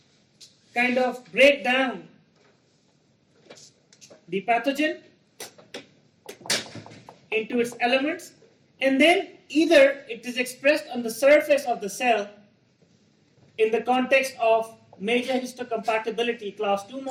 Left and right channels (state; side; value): identical; both; correlation 1.00